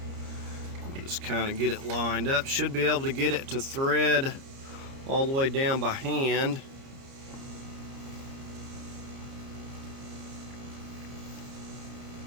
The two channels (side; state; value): left; late; 30 ms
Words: Just kind of get it lined up. Should be able to get it to thread all the way down by hand.